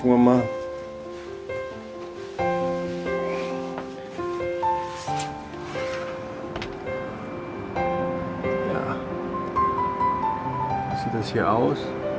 wir mal. Ja, sieht das hier aus.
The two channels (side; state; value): both; identical; correlation 1.00